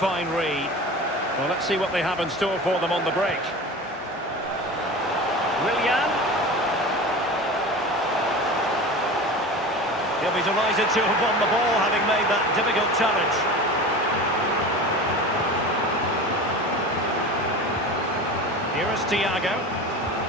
read. Well, let's see what they have in store for them on the break. Willian. He'll be delighted to have won the ball, having made that difficult challenge. Here is Thiago.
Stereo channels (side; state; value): both; normal; correlation 0.33